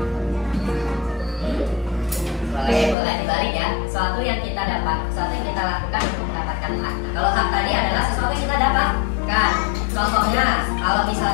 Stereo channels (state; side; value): drops out; right; at 3.0 s